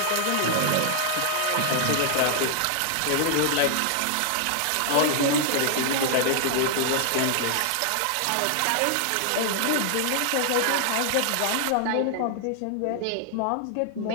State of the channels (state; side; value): different; both; correlation 0.00